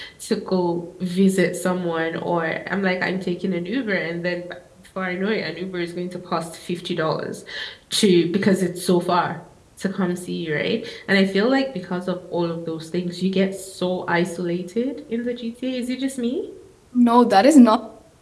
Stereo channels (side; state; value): both; identical; correlation 1.00